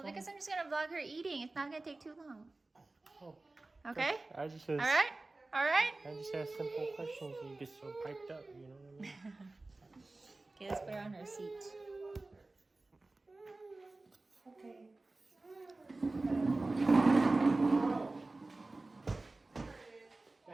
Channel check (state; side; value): quieter; left; 3.1 dB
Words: because I'm just gonna vlog her eating. It's not gonna take too long. Oh, Okay? I just All right? All right? I just ask simple questions and you get so piped up, you know what I mean? Okay, let's put her on her seat. Okay.